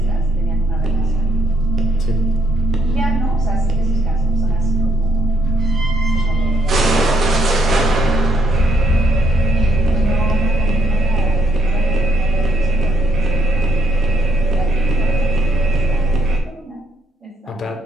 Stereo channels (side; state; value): both; normal; correlation 0.72